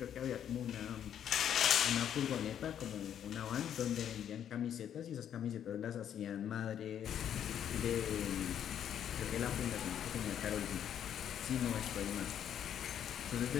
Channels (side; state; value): right; quieter; 9.6 dB